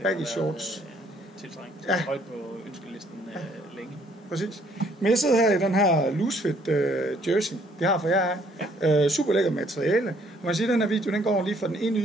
baggy shorts. Tiltrængt. Ja. Højt på ønskelisten længe. Præcis. Men jeg sidder her i den her loosefit jersey, vi har for jer. Ja. Super lækker materiale. Og man siger, at den her video, den går lige fra den ene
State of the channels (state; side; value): normal; both; correlation 0.64